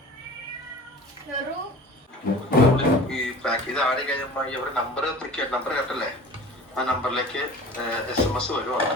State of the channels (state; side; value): normal; both; correlation 0.40